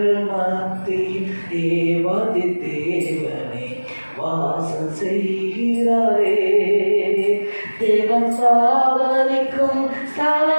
மத்தியில் தேவாதி தேவனே வாசம் செய்கிறாரே. தேவன் சாவரிக்கும்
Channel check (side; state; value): both; inverted; correlation -1.00